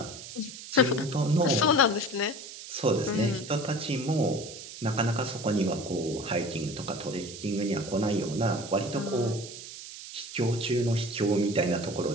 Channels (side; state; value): right; noise; hiss, 12 dB below the sound